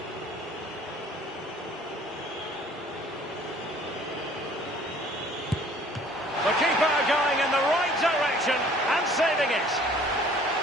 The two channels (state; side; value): normal; both; correlation 0.53